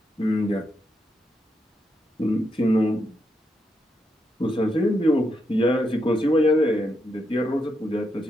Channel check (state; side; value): normal; both; correlation 0.82